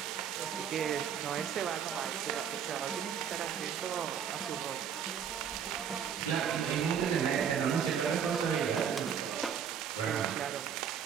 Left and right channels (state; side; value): quieter; left; 8.0 dB